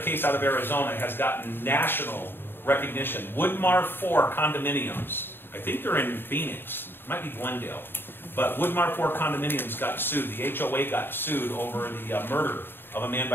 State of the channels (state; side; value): late; right; 0.10 ms